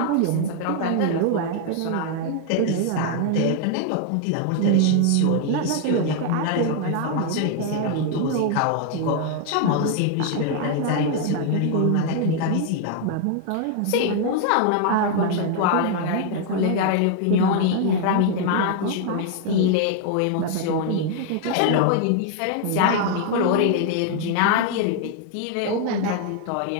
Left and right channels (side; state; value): both; different; correlation 0.00